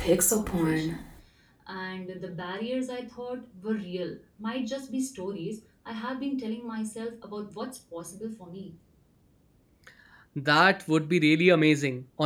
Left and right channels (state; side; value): identical; both; correlation 1.00